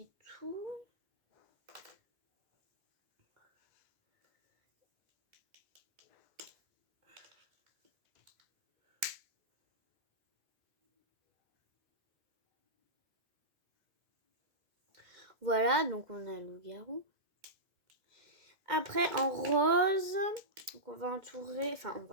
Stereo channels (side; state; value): left; late; 2.1 ms